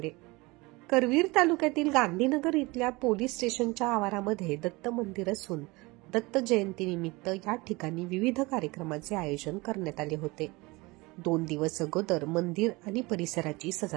करवीर तालुक्यातील गांधीनगर इथल्या पोलीस स्टेशनच्या आवारामध्ये दत्त मंदिर असून दत्त जयंतीनिमित्त या ठिकाणी विविध कार्यक्रमाचे आयोजन करण्यात आले होते. 2 दिवस अगोदर मंदिर आणि परिसराची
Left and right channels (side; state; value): left; quieter; 23.7 dB